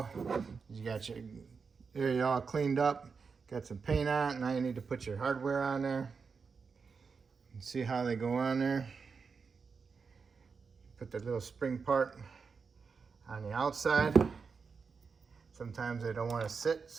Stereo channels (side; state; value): left; quieter; 5.3 dB